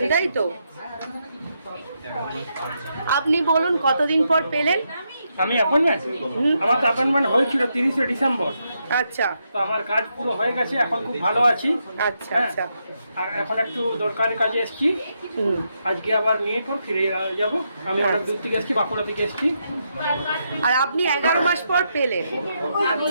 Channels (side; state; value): both; inverted; correlation -0.81